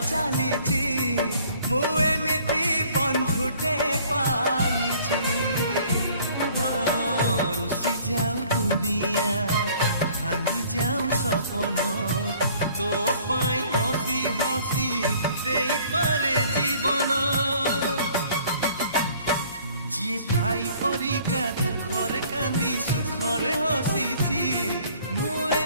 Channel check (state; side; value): inverted; both; correlation -0.56